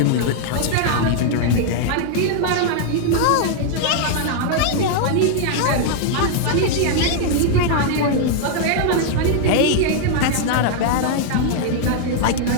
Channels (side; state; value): both; different; correlation 0.00